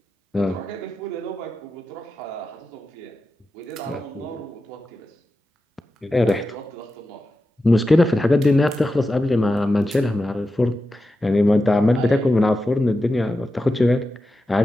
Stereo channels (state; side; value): normal; both; correlation 0.91